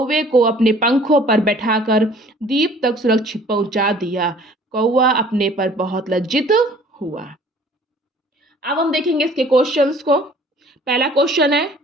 को अपने पंखों पर बैठाकर द्वीप तक सुरक्षित पहुंचा दिया। कौवा अपने पर बहुत लज्जित हुआ। अब हम देखेंगे इसके क्वेश्चंस को। पहला क्वेश्चन है,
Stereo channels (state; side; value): normal; both; correlation 0.53